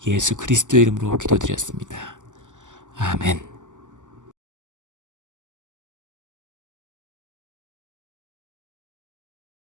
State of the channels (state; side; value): late; left; 0.86 ms